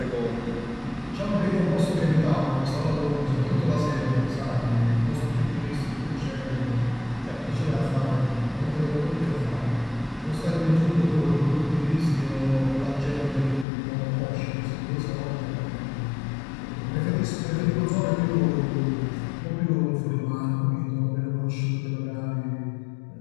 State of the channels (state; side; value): drops out; right; at 13.7 s